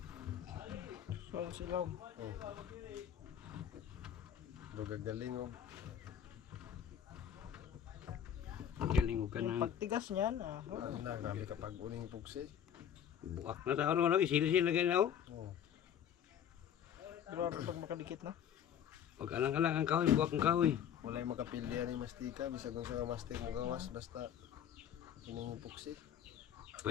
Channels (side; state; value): right; quieter; 9.3 dB